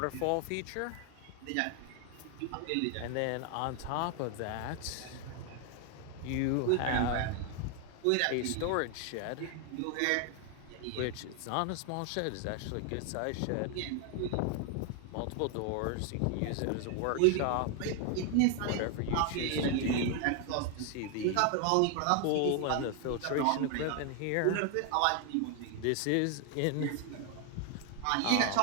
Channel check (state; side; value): different; both; correlation 0.01